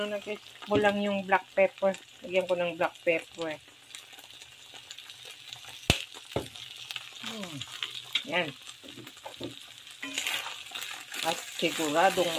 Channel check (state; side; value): identical; both; correlation 1.00